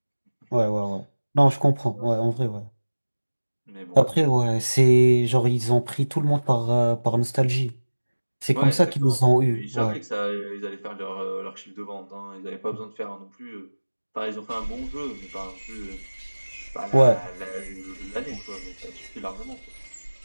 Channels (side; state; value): both; inverted; correlation -1.00